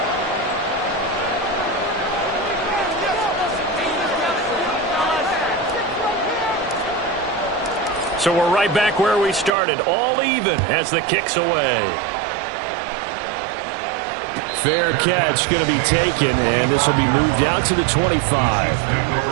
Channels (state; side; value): drops out; left; at 9.5 s